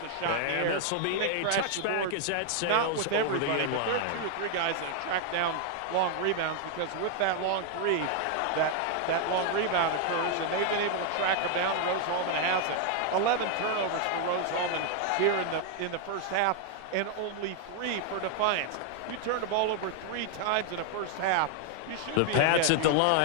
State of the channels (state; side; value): different; both; correlation 0.00